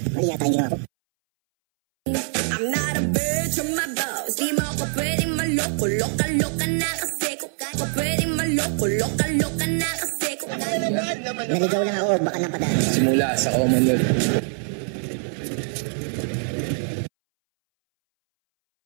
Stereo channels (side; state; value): left; silent; 63 dB below the other